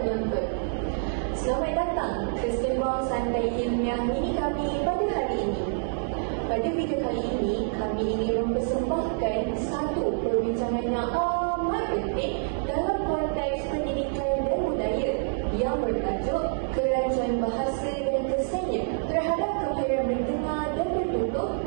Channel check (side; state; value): left; silent; digital silence